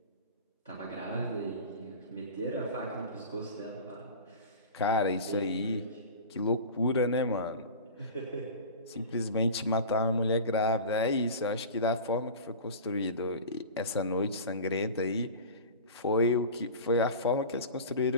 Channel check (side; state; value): both; inverted; correlation -0.34